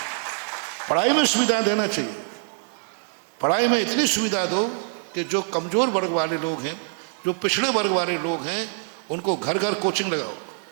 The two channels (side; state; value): left; silent; 62 dB below the other